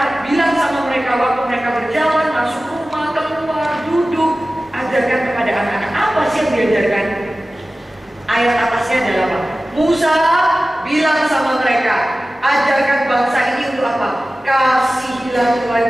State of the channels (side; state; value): both; normal; correlation 0.96